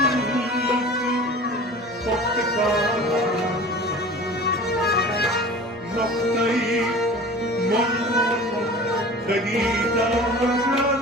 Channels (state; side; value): normal; both; correlation 0.40